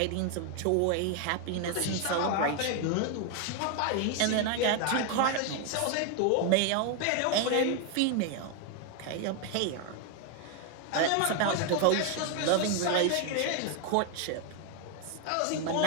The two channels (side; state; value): both; different; correlation 0.01